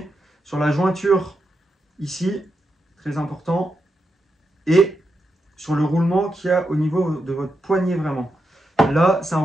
sur la jointure ici, très important, et sur le roulement qu'il y a au niveau de votre poignet vraiment. Là, c'est un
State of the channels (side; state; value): both; normal; correlation 0.86